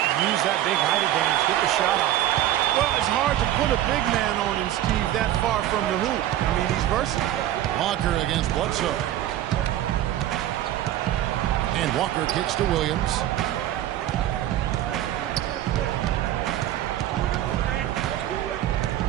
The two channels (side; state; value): left; quieter; 13.0 dB